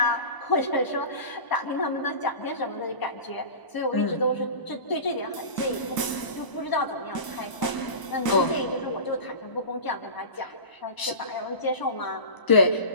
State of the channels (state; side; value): late; right; 1.0 ms